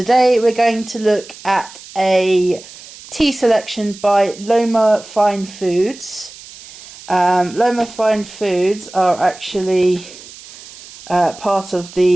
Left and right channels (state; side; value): noise; right; hiss, 18 dB below the sound